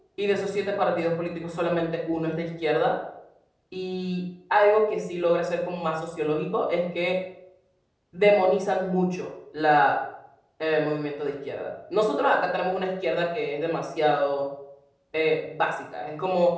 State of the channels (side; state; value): both; identical; correlation 1.00